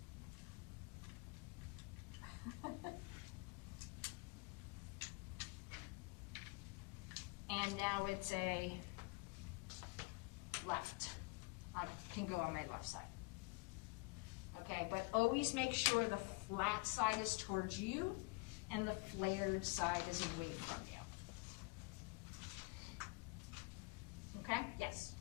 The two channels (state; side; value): quieter; right; 27.8 dB